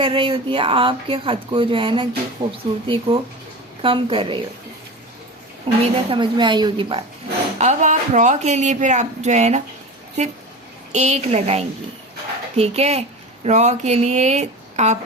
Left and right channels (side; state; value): both; normal; correlation 0.30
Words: रही होती है, आपके ख़त को जो है ना कि खूबसूरती को कम कर रही होती है। उम्मीद है समझ में आई होगी बात। अब आप रॉ के लिए फिर आप जो है ना सिर्फ 1 लगाएंगी, ठीक है। रॉ के लिए आप